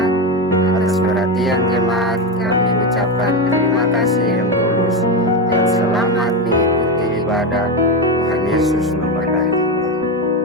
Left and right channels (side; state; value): both; normal; correlation 0.14